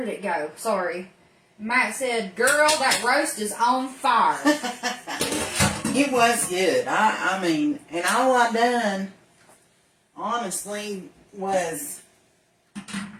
it go? Sorry. Matt said, girl, that roast is on fire. It was good. I mean, and all I done, honestly, was, I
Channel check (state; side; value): identical; both; correlation 1.00